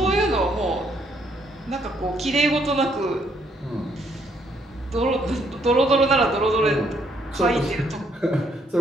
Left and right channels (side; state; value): both; normal; correlation 0.70